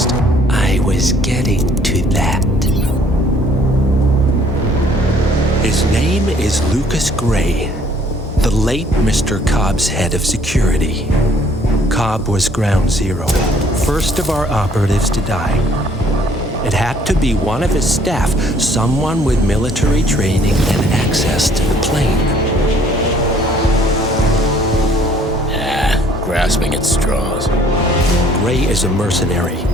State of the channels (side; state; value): both; normal; correlation 0.60